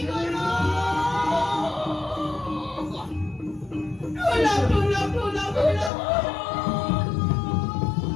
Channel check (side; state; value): right; drops out; at 5.9 s